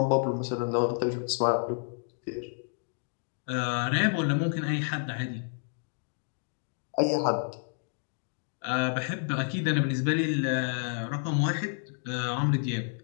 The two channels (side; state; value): right; silent; 58 dB below the other